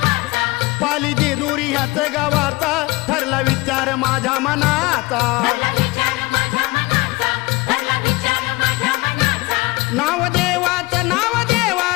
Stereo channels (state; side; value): quieter; right; 22.3 dB